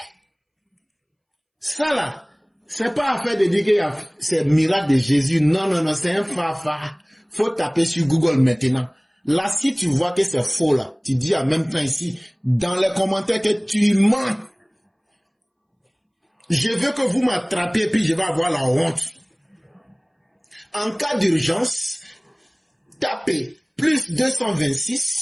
Ça là, C'est pas affaire de dire que c'est miracle de Jésus. Non, non, non, c'est un fafa. Faut taper sur Google maintenant. Là, si tu vois que c'est faux, là, tu dis en même temps ici, dans les commentaires que tu mens. Je veux que vous m'attrapiez, puis je vais avoir la honte. En cas d'urgence, tapez plus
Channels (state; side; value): identical; both; correlation 1.00